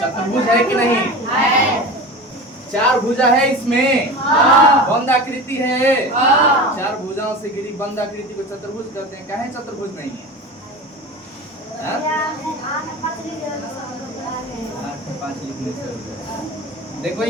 चतुर्भुज है कि नहीं? 4 भुजा है इसमें, बंद आकृति है। 4 भुजाओं से घिरी बंद आकृति को चतुर्भुज कहते हैं। काहे चतुर्भुज नहीं है? 5 लिखने से देखो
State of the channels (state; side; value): normal; both; correlation 0.31